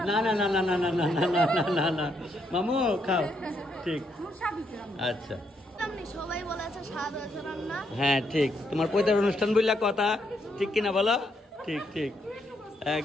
না না না না না না না না না না না মামু খাও ঠিক আচ্ছা। সবাই বলেছে স্বাদ হয়েছে রান্না। হ্যাঁ ঠিক, তোমার পৈতার অনুষ্ঠান বললা কথা ঠিক কিনা বলো? ঠিক ঠিক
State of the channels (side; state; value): both; normal; correlation 0.76